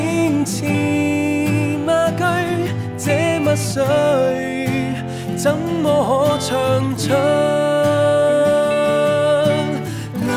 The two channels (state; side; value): identical; both; correlation 1.00